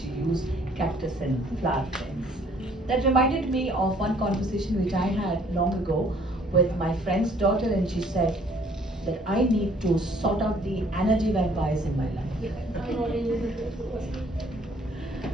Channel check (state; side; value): normal; both; correlation 0.59